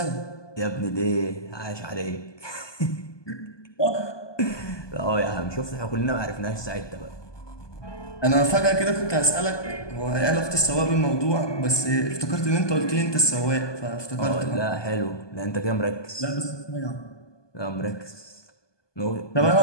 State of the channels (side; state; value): right; late; 1.2 ms